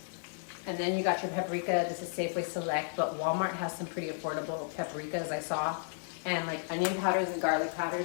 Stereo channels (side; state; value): right; silent; 56 dB below the other